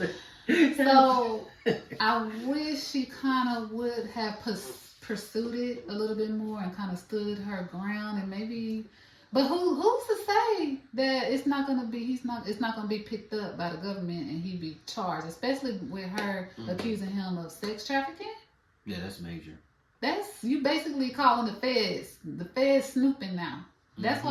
so I wish she kind of would have pursued it a little bit more and kind of stood her ground and maybe. But who's to say that it's not gonna be picked up by the government and he be charged, especially with her accusing him of sex trafficking? Yeah, that's major. That's you basically calling the feds snooping now. That's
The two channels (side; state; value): both; identical; correlation 1.00